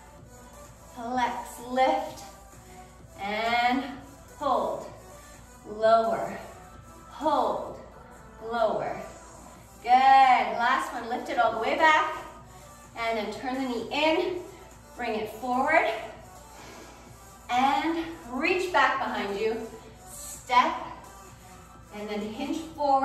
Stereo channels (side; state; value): both; identical; correlation 1.00